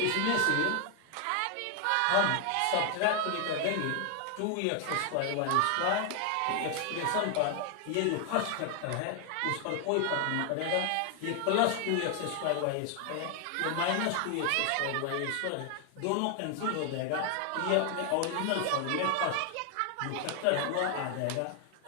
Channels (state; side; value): different; both; correlation 0.00